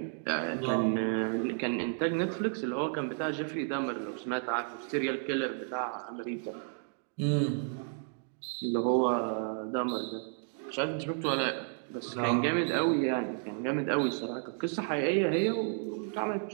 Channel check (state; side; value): silent; left; 56 dB below the other